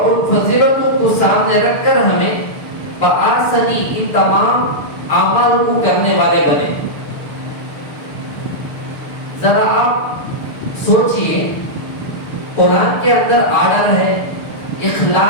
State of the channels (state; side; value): late; right; 6.7 ms